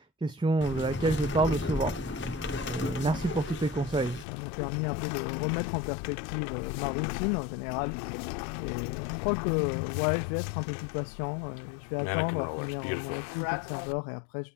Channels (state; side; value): drops out; right; at 4.2 s